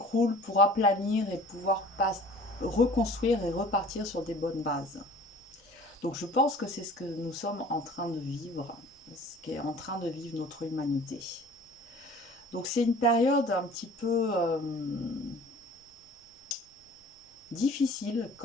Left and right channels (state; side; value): normal; both; correlation 0.47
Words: pour aplanir et pouvoir reconstruire et repartir sur des bonnes bases. Donc je pense que c'est ce que nous sommes en train de vivre, ce qu'est en train de vivre notre humanité. Donc c'est une période un petit peu difficile